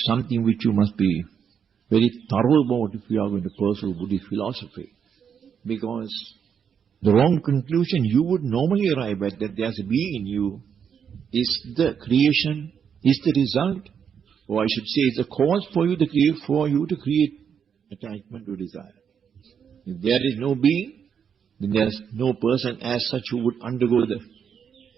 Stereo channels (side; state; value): left; quieter; 7.5 dB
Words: something which you must be very thorough about if you are going to pursue Buddhist philosophy. Because the wrong conclusion you would normally arrive at, that there's a being in you, is the creation, is the result, or I should say is the cause for you to create attachment or desire. If there is no being, then there is no person as such who would undergo the